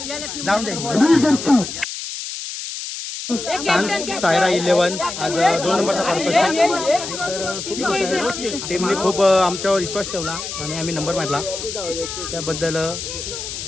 जाऊन दे. सायरा 11 आज 2 नंबरचा पर्पज. टीमने खूप आमच्यावर विश्वास ठेवला आणि आम्ही नंबर मारला, त्याबद्दल 2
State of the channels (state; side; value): noise; left; hiss, 7 dB below the sound